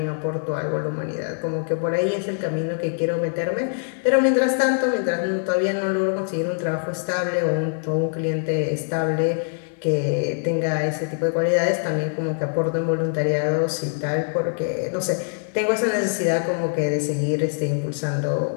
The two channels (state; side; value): silent; right; digital silence